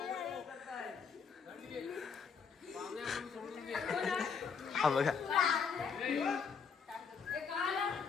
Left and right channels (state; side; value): quieter; right; 6.0 dB